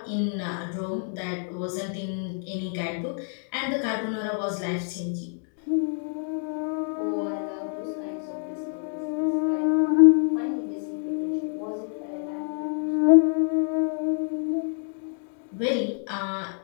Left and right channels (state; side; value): silent; right; 60 dB below the other